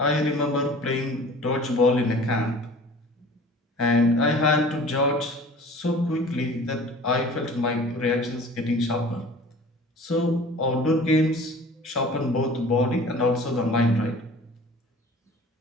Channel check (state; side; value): normal; both; correlation 0.44